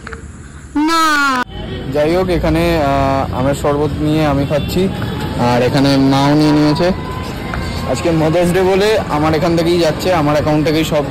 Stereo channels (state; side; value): identical; both; correlation 1.00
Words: না যাই হোক এখানে আমের শরবত নিয়ে আমি খাচ্ছি, আর এখানে মাও নিয়ে নিয়েছে। আজকে মাদার্স ডে বলে আমার এখান থেকেই যাচ্ছে, আমার অ্যাকাউন্ট থেকেই সব